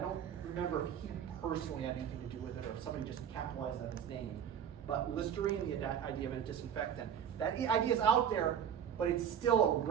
don't remember if he personally had anything to do with it or if somebody just capitalized on his name. But Listerine, the idea of a disinfectant, that idea is out there, but it's still a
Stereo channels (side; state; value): left; quieter; 8.7 dB